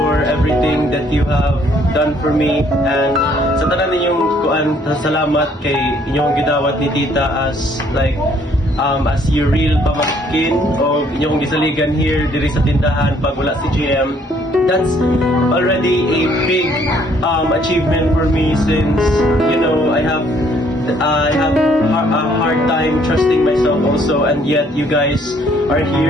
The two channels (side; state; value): both; normal; correlation 0.64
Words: everything that you have done for me. And sa tanan ninyong salamat kay inyong gidawat ni Tita as your real pamangkin o inyong gisaligan here diri sa tindahan pag wala si GM. That's already a big achievement for me, since I have a hard time trusting myself also, and yet you guys are